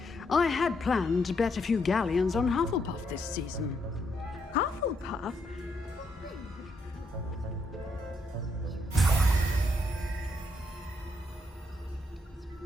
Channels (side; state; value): both; normal; correlation 0.76